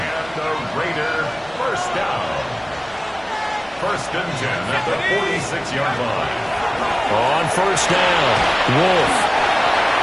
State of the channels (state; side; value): noise; right; hum, 29 dB below the sound